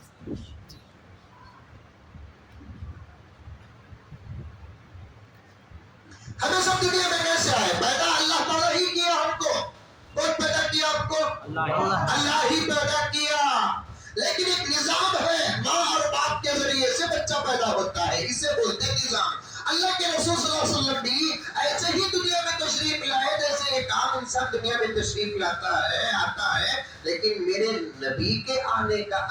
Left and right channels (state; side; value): identical; both; correlation 1.00